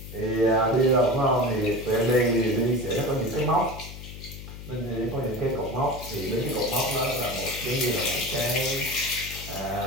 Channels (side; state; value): left; noise; hum, 12 dB below the sound